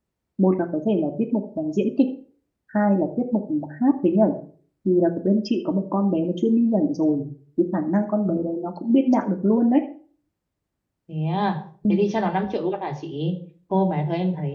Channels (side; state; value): both; identical; correlation 1.00